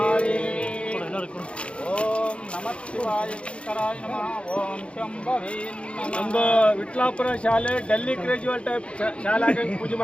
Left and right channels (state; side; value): late; right; 0.059 ms